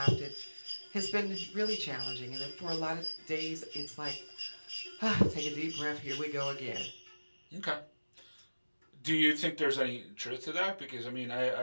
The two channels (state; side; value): inverted; both; correlation -1.00